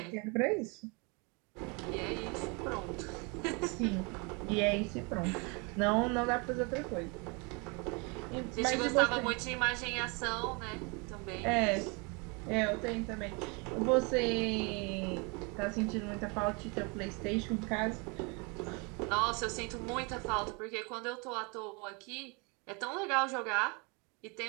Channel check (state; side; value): quieter; left; 31.0 dB